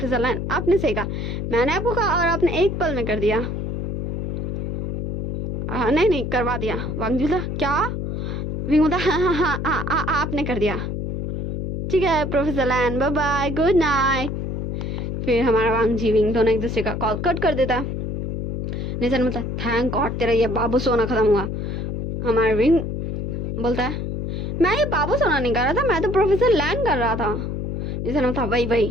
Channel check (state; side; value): noise; left; hum, 3 dB below the sound